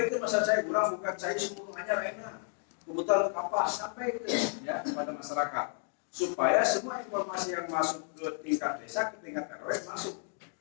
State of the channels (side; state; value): right; silent; 55 dB below the other